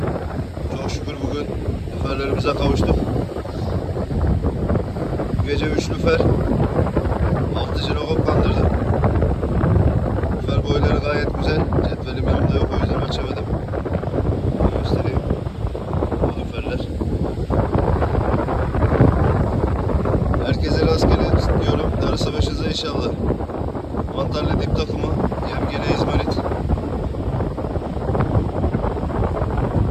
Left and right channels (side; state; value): both; identical; correlation 1.00